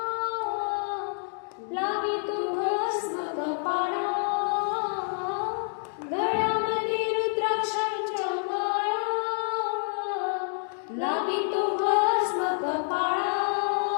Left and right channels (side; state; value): right; silent; 59 dB below the other